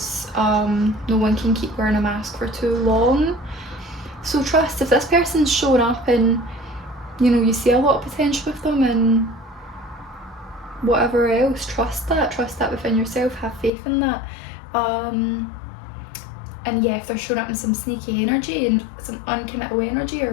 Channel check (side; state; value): right; drops out; at 13.7 s